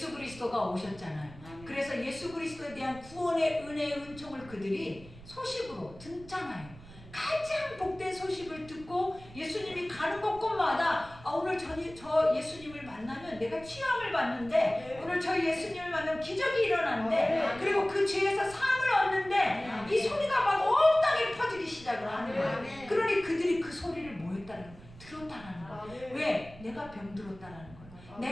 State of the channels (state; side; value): noise; right; rumble, 19 dB below the sound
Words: 그리스도가 오셨잖아요. 그래서 예수 그리스도에 대한 구원의 은혜의 은총을 그들이 소식으로 듣잖아요. 가장 복된 소식을 듣고 예수님이 가는 곳곳마다 오늘 저 예수님을 만나면 내가 치유함을 받는데, 오늘 저 예수님을 만나면 기적이 일어나는데, 그리고 그 죄에서 사함을 얻는데, 이 소리가 막 온 땅에 퍼지기 시작을 하는 거예요. 그러니 그들이 그 소리를 뭐였다는 거예요? 들었다라는 거예요. 왜? 내가 병들었다라는 거예요.